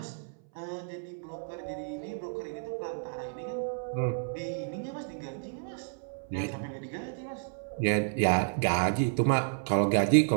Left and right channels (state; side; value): silent; left; 57 dB below the other